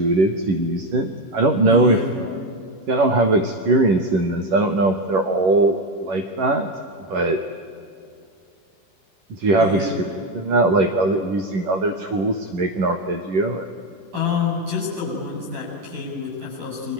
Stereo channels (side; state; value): left; late; 11 ms